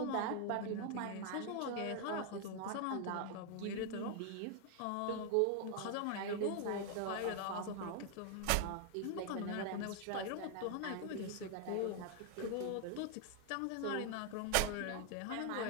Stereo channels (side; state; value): both; different; correlation 0.00